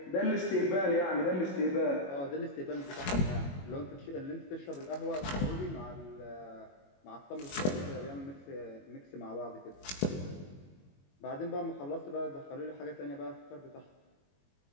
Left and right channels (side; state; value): right; late; 22 ms